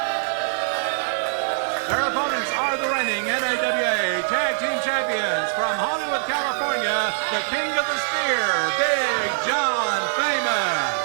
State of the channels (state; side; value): silent; left; digital silence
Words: Their opponents are the reigning NAWA Tag Team Champions from Hollywood, California, the King of the Spear, Big John Famous.